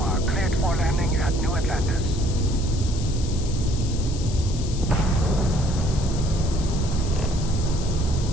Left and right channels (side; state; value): left; noise; hiss, 13 dB below the sound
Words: cleared for landing at New Atlantis.